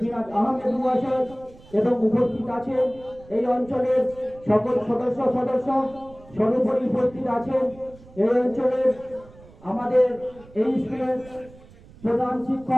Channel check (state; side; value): noise; right; rumble, 23 dB below the sound